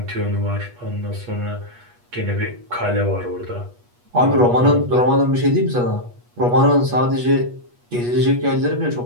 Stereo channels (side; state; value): left; late; 8.3 ms